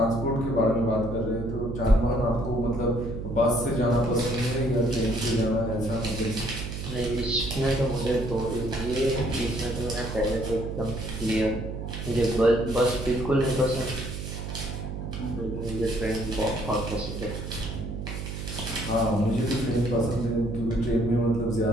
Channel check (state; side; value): noise; right; hum, 6 dB below the sound